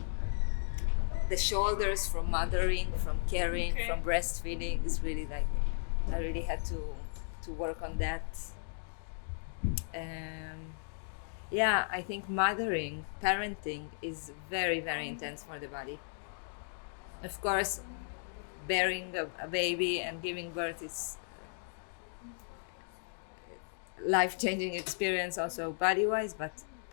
the shoulders from mothering, from carrying, from breastfeeding is really like I really had to work on that. Yeah, I think parenting is very, very intense for the body. Of course, bearing a baby and giving birth is life-changing experience also body-wise, but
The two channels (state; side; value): silent; right; digital silence